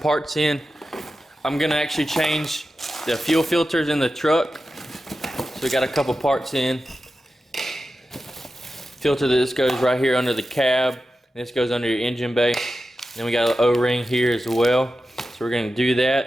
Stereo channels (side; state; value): both; normal; correlation 0.92